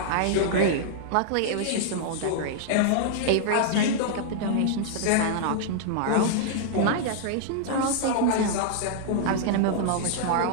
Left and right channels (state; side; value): different; both; correlation -0.01